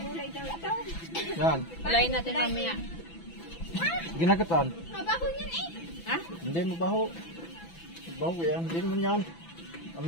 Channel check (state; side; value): late; right; 6.0 ms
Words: daw ito. Yan. Walayin natin mamaya. Ginagatan. Mabaho yan eh. Ha? Hindi mabaho. Mabaho yan. Hindi naman yan.